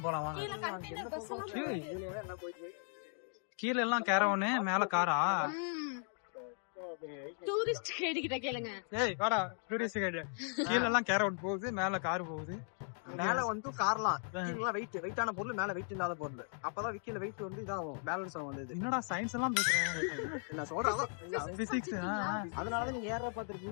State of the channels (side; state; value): right; silent; 53 dB below the other